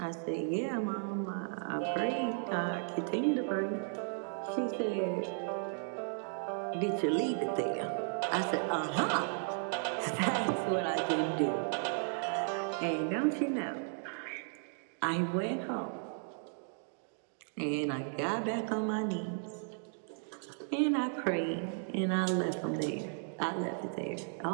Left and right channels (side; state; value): left; silent; 54 dB below the other